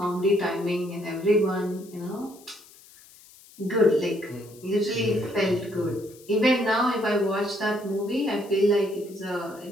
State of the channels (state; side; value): noise; left; hiss, 23 dB below the sound